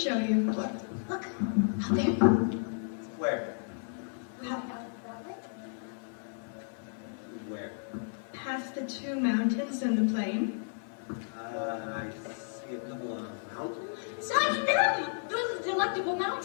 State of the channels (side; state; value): right; silent; digital silence